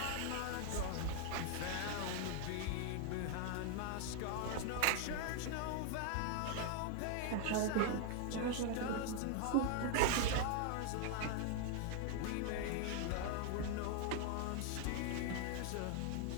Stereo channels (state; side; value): different; both; correlation 0.00